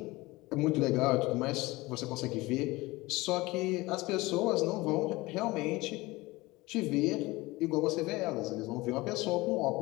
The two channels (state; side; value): quieter; right; 21.1 dB